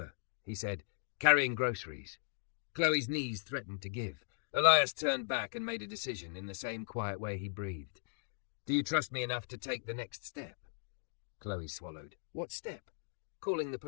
he said, carrying groceries. Chloe's knees threatened to give. Elias turned back and made a decision in the same quiet way he breathed. Do you trust me enough to take the next step? Chloe swallowed. What step? Calling the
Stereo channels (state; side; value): silent; right; digital silence